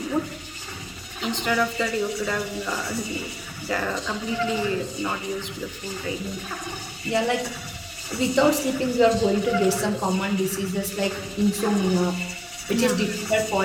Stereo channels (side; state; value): both; identical; correlation 1.00